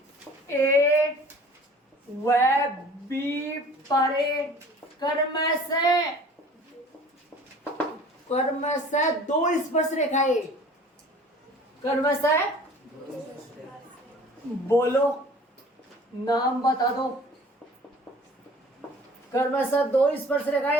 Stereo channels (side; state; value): both; normal; correlation 0.47